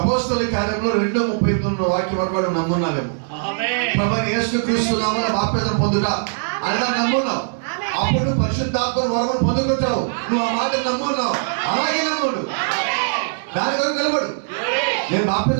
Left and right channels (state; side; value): silent; left; digital silence